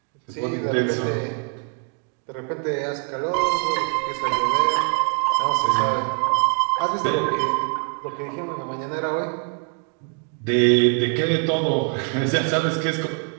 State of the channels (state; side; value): quieter; left; 37.7 dB